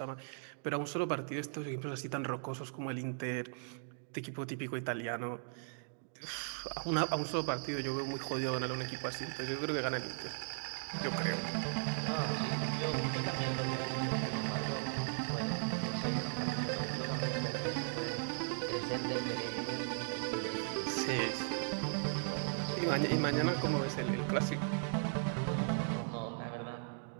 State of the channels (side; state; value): left; silent; digital silence